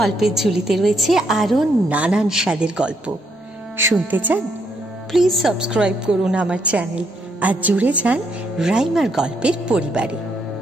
ঝুলিতে রয়েছে আরো নানান স্বাদের গল্প। শুনতে চান? প্লিজ সাবস্ক্রাইব করুন আমার চ্যানেল আর জুড়ে যান রাইমার গল্পের পরিবারে।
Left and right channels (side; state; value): both; normal; correlation 0.75